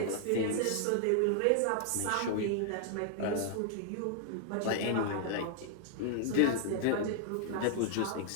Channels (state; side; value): different; both; correlation 0.00